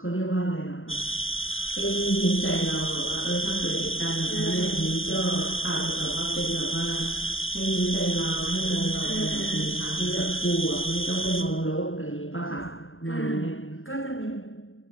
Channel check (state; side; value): late; right; 0.59 ms